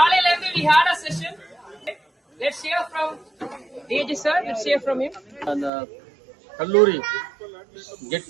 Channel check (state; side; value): drops out; left; at 5.7 s